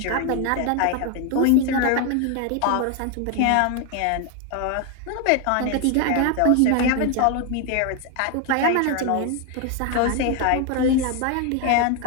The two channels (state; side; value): different; both; correlation 0.01